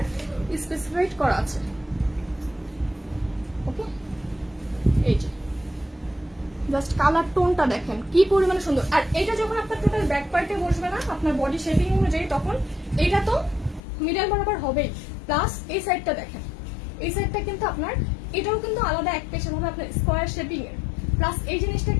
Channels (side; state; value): right; drops out; at 13.8 s